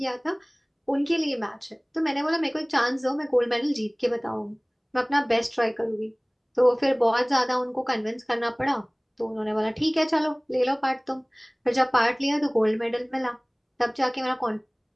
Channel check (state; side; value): identical; both; correlation 1.00